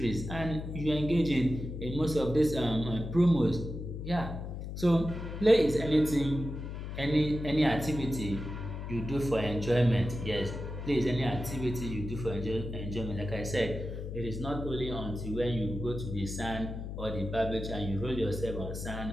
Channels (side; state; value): left; noise; hum, 7 dB below the sound